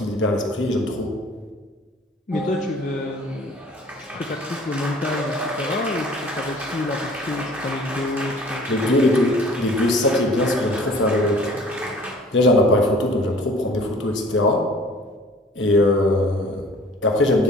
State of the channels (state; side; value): normal; both; correlation 0.50